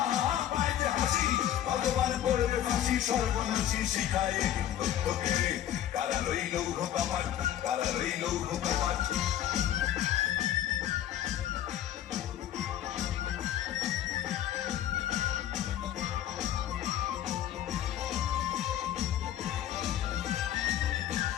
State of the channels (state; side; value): quieter; right; 11.6 dB